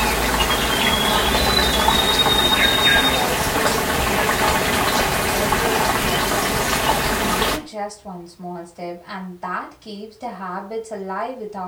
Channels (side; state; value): both; identical; correlation 1.00